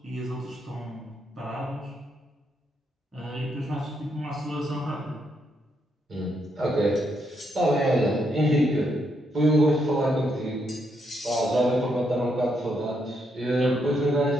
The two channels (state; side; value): normal; both; correlation 0.77